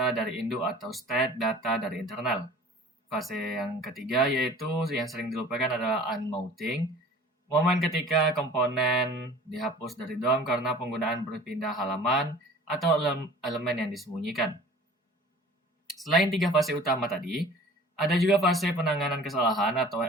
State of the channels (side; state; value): both; normal; correlation 0.46